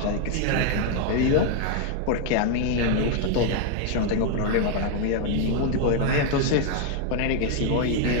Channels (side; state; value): both; different; correlation 0.00